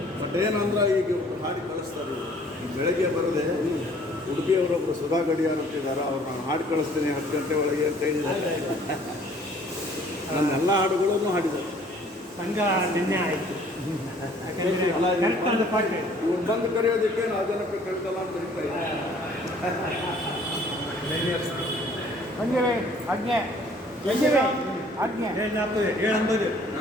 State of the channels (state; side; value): normal; both; correlation 0.56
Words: ಬಟ್ ಏನಂದ್ರೆ ಈಗ ಹಾಡಿ ಕಳಿಸ್ತಾರೆ. ಬೆಳಗ್ಗೆ ಬರದೆ ಉಡುಪಿಯವರೊಬ್ಬರು ಸುಧಾ ಗಡಿಯಾರ್ ಅಂತಿದ್ದಾರೆ, ಅವ್ರು ನಾನು ಹಾಡು ಕಳಿಸ್ತೀನಿ 10 ಗಂಟೆ ಒಳಗೆ ಅಂತ ಹೇಳಿದ್ದಾರೆ. ನನ್ನೆಲ್ಲ ಹಾಡುಗಳನ್ನು ಹಾಡಿದ್ದಾರೆ. ಸಂಘ ನಿನ್ನೆ ಆಯಿತು. ಇವ್ರು ಬಂದು ಕರೆಯೋದಕ್ಕೆ ನಾವು ಜನಕ್ಕೆ ಕಳ್ತಲ್ಲ ಅಂತ ಹೇಳ್ತಾ ಇದ್ದಾರೆ. 7:50